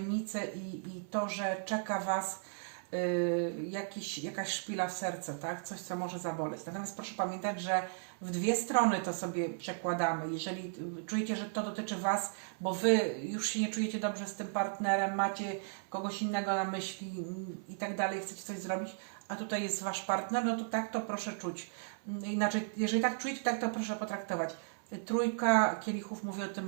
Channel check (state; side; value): silent; left; 54 dB below the other